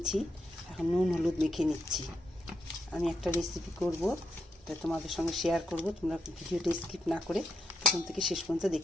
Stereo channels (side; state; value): both; normal; correlation 0.81